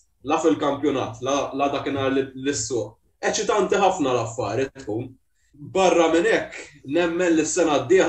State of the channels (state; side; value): identical; both; correlation 1.00